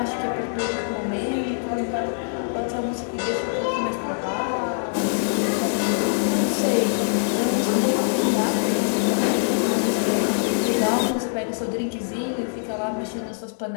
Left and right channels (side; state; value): right; silent; digital silence